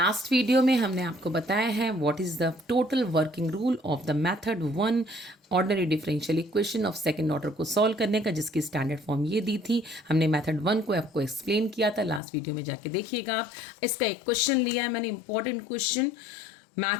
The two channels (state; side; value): drops out; right; at 12.2 s